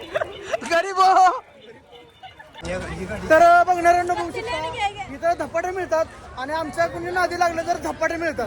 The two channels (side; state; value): both; identical; correlation 1.00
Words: तर बघणाऱ्यांना बघू शकता इथं धपाटे मिळतात आणि आमच्या कोणी नादी लागलं तर धपाटे मिळतात.